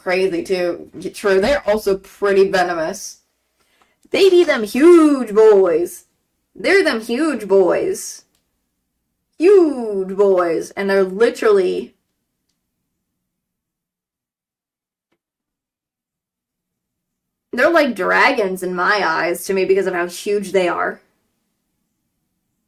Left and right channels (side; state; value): both; identical; correlation 1.00